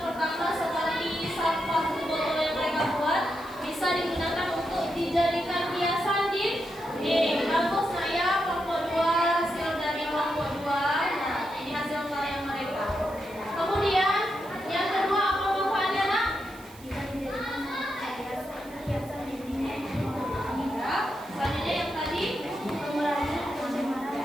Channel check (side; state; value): right; noise; hiss, 22 dB below the sound